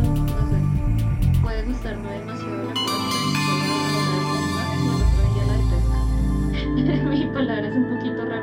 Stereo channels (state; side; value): identical; both; correlation 1.00